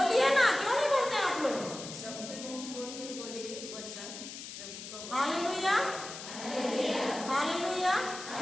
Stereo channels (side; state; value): left; noise; hiss, 10 dB below the sound